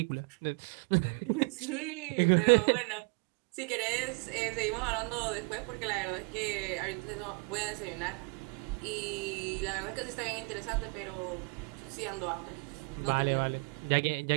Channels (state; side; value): quieter; left; 32.1 dB